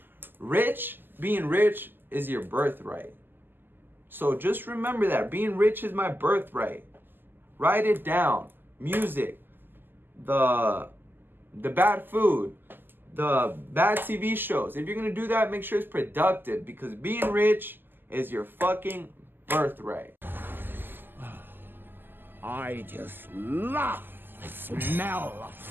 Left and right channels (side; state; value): left; late; 0.093 ms